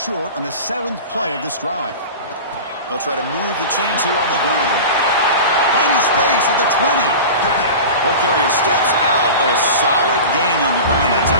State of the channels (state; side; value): inverted; both; correlation -0.32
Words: on the 7th play of this drive. They'll try to move the chains here on the ground. Finding space at the 20. Ball carrier steps out, but a solid gain on the ground that